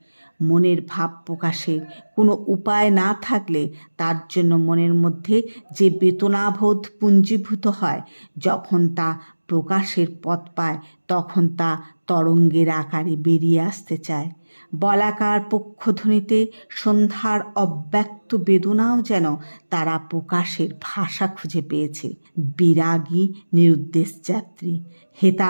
মনের ভাব প্রকাশের কোনো উপায় না থাকলে তার জন্য মনের মধ্যে যে বেদনাবোধ পুঞ্জীভূত হয়, যখন তা প্রকাশের পথ পায় তখন তা তরঙ্গের আকারে বেরিয়ে আসতে চায়। বলাকার পক্ষধ্বনিতে সন্ধ্যার অব্যক্ত বেদনাও যেন তারা প্রকাশের ভাষা খুঁজে পেয়েছে। বিরাগী নিরুদ্দেশ যাত্রী, হেতা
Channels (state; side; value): inverted; both; correlation -1.00